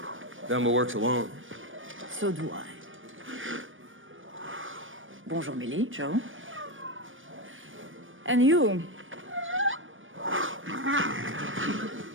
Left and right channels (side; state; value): left; late; 0.57 ms